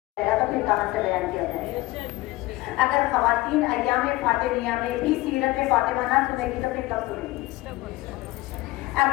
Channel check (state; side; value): quieter; right; 19.2 dB